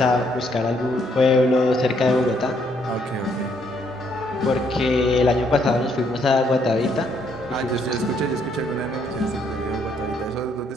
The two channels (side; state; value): both; normal; correlation 0.70